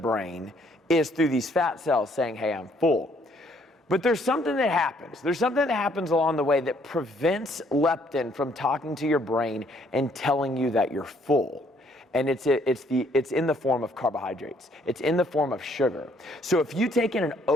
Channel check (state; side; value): normal; both; correlation 0.66